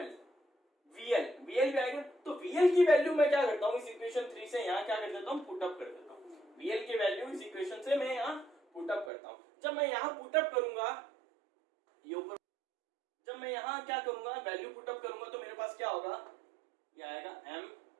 VL भी आएगा। तो VL की वैल्यू मैं क्या करता हूं, इस इक्वेशन 3 से यहां क्या कर देता हूं? पुटअप कर देता हूं। VL की वैल्यू इस इक्वेशन से मैं यहां पुटअप करता हूं। जब मैं यहां पुटअप करूंगा, ये ऊपर, जब मैं यहां क्या करूंगा, वैल्यू पुटअप करूंगा, तो मेरे पास क्या होगा? ये आएगा m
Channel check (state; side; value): drops out; left; at 9.1 s